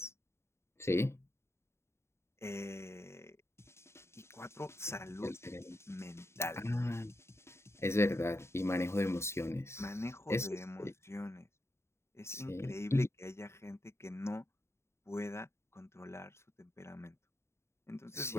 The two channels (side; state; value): right; late; 0.13 ms